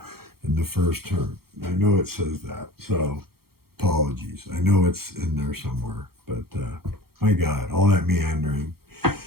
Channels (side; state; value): left; late; 0.94 ms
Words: In the first turn. I know it says that. So apologies. I know it's in there somewhere. But my God, all that meandering.